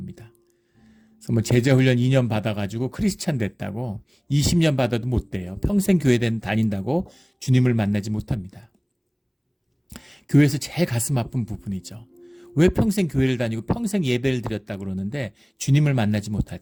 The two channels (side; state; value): both; identical; correlation 1.00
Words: 그래서 뭐 제자훈련 2년 받아가지고 크리스찬 됐다고 20년 받아도 못 돼요. 평생 교회 다닌다고 주님을 만나지 못합니다. 교회에서 제일 가슴 아픈 부분이죠. 왜 평생 교회를 다니고 평생 예배를 드렸다고 그러는데 주님을 만나지